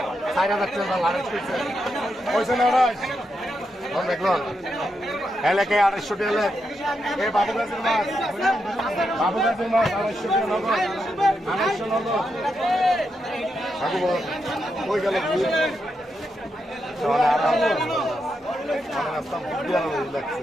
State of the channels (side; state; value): both; normal; correlation 0.84